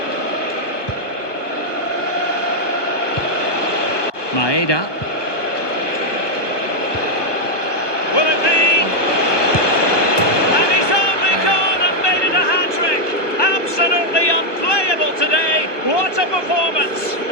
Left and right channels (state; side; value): late; right; 1.2 ms